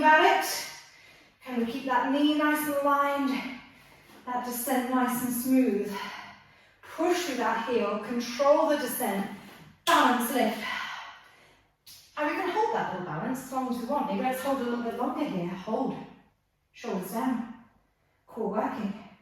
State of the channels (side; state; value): both; identical; correlation 1.00